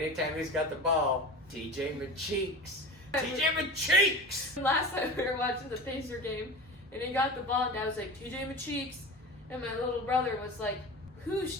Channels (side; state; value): both; normal; correlation 0.32